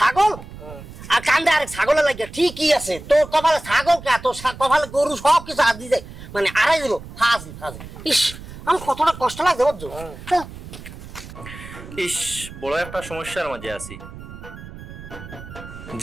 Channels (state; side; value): noise; right; rumble, 14 dB below the sound